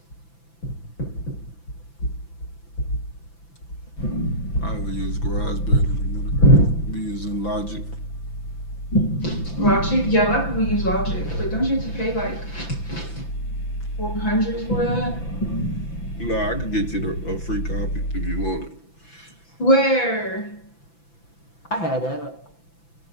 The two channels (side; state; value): right; late; 5.9 ms